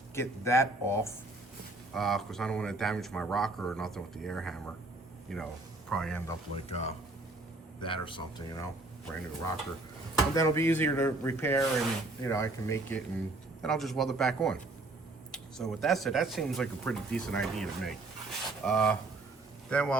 get that off because I don't want to damage my rocker or nothing with the air hammer. You know, probably end up like that or something, you know, brand new rocker. And then it'll be easier to repair and, you know, I can make it and then I'll just weld it back on. So with that said, that seems like a pretty decent idea to me. Then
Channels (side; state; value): left; quieter; 3.0 dB